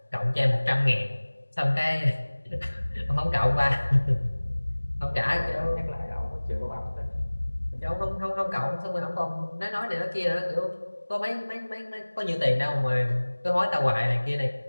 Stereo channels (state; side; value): inverted; both; correlation -1.00